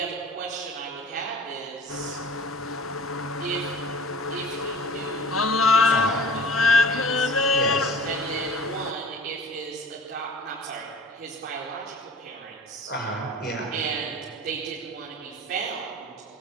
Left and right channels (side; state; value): both; normal; correlation 0.43